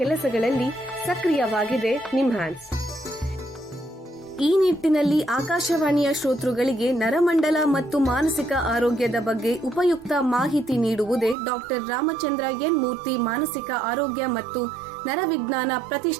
ಕೆಲಸಗಳಲ್ಲಿ ಸಕ್ರಿಯವಾಗಿದೆ ನಿಮ್ಹಾನ್ಸ್. ಈ ನಿಟ್ಟಿನಲ್ಲಿ ಆಕಾಶವಾಣಿಯ ಶ್ರೋತೃಗಳಿಗೆ ನರಮಂಡಲ ಮತ್ತು ಮಾನಸಿಕ ಆರೋಗ್ಯದ ಬಗ್ಗೆ ಉಪಯುಕ್ತ ಮಾಹಿತಿ ನೀಡುವುದೇ ಡಾಕ್ಟರ್ ರಾಮಚಂದ್ರ ಎನ್ ಮೂರ್ತಿ ಮಾನಸಿಕ ಆರೋಗ್ಯ ಮತ್ತು ನರವಿಜ್ಞಾನ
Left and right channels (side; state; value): left; drops out; at 11.4 s